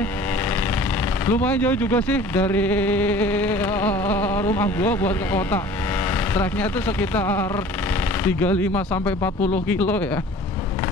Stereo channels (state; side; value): normal; both; correlation 0.46